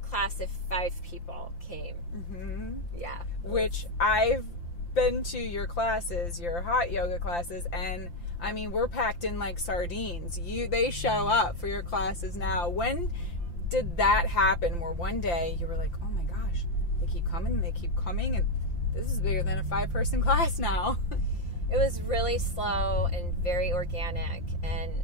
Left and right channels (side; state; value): right; late; 5.8 ms